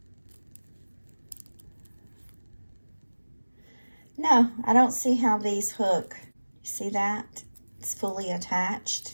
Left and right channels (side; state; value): both; inverted; correlation -1.00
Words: no, I don't see how these hook. You see that? It's fully